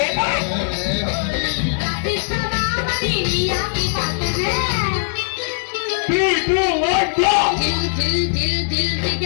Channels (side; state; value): right; silent; digital silence